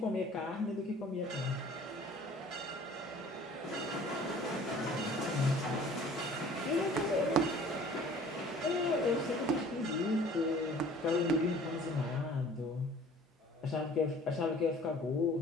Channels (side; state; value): both; normal; correlation 0.50